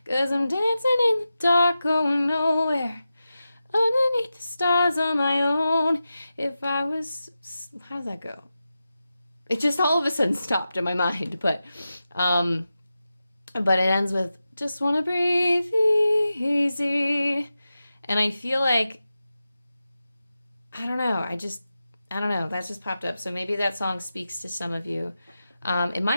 'Cause I'm dancing in the dark, going nowhere. Underneath the stars on my own. If I was, how's that go? It just all of a sudden stopped in my mind, but it ends with, just want to breathe easy. And I feel like, I don't know, I don't know. That just popped up. So maybe that song speaks to some of you. It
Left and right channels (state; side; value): inverted; both; correlation -0.92